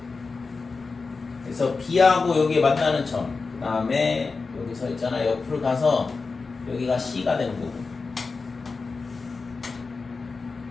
그래서 b하고 여기 만나는 점 그 다음에 여기서 있잖아 옆으로 가서 여기가 c가 되는 거고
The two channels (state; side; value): quieter; right; 4.3 dB